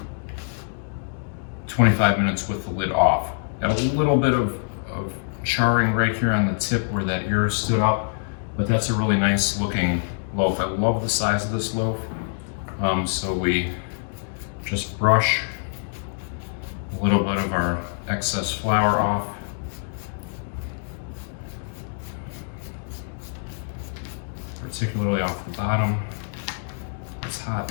25 minutes with the lid off. Got a little bit of charring right here on the tip where that ear stood up, but that's a really nice looking loaf. I love the size of this loaf. So we just brush a little bit of our excess flour off. Particularly off the bottom. It's hot.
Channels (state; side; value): silent; right; digital silence